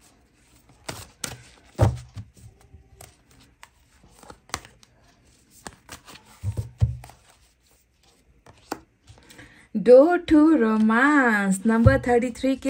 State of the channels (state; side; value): identical; both; correlation 1.00